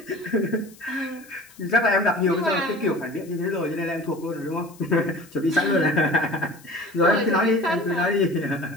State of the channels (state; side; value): noise; left; hiss, 24 dB below the sound